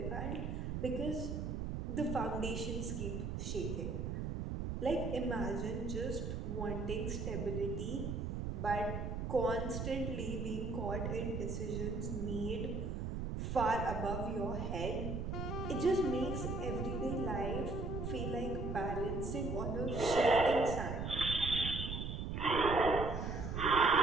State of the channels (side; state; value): right; noise; rumble, 3 dB below the sound